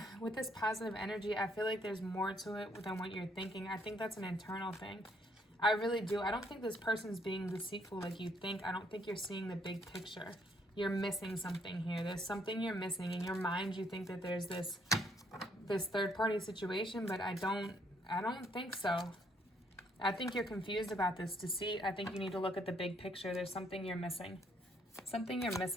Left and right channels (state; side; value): normal; both; correlation 0.69